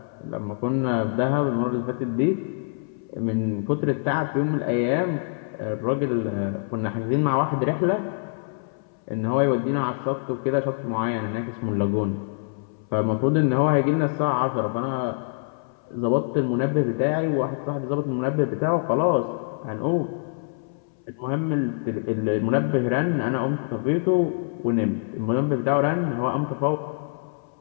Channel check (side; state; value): right; silent; 61 dB below the other